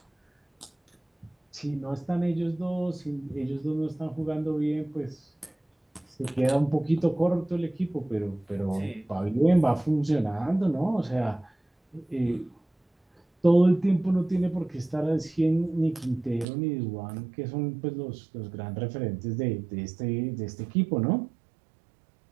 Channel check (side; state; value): left; drops out; at 16.4 s